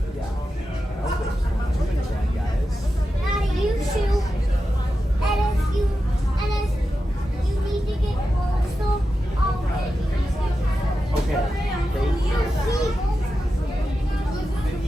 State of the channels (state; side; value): normal; both; correlation 0.91